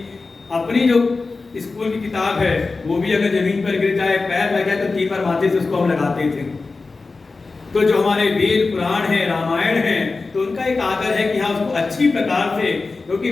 अपनी जो स्कूल की किताब है वो भी अगर जमीन पर गिर जाए, पैर लग जाए तो 3 बार माथे से उसको हम लगाते थे। तो जो हमारे वेद पुराण है, रामायण है, तो उनका एक आदर है कि हाँ उसको अच्छी प्रकार से, क्योंकि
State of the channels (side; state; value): right; quieter; 3.9 dB